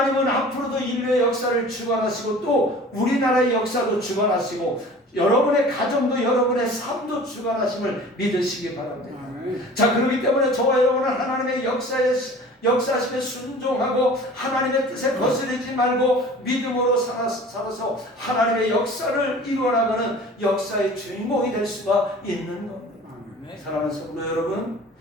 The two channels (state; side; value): normal; both; correlation 0.43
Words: 앞으로도 인류의 역사를 주관하시고, 또 우리나라의 역사도 주관하시고, 여러분의 가정도 여러분의 삶도 주관하심을 믿으시기 바랍니다. 자, 그렇기 때문에 저와 여러분은 하나님의 역사하심에 순종하고 아하나님의 뜻에 거스르지 말고 믿음으로 살아서 하나님의 역사를 이루어나가는 역사의 주인공이 될 수가 있는 겁니다. 사랑하는 성도 여러분,